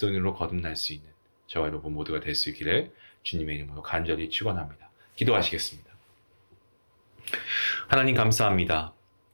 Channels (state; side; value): inverted; both; correlation -1.00